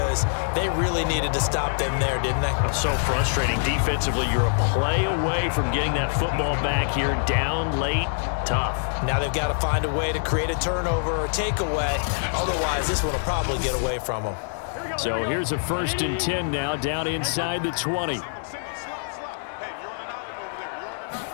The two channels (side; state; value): right; silent; digital silence